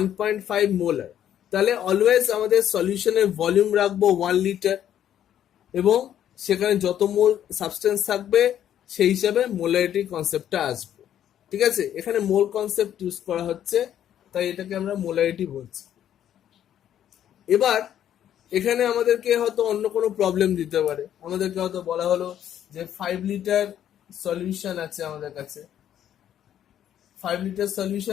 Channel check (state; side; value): quieter; right; 10.5 dB